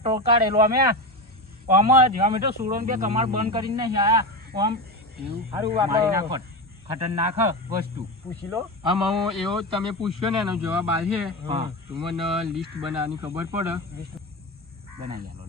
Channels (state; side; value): normal; both; correlation 0.19